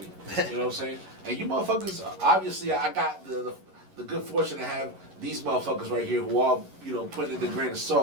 You know what I'm saying? And you motherfuckers, obviously, I got the good fortune to have these motherfuckers right here who all, put in the grain of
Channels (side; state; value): left; late; 11 ms